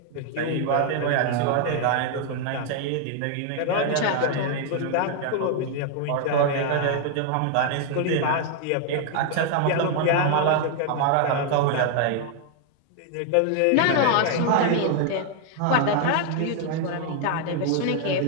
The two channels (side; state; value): both; different; correlation 0.00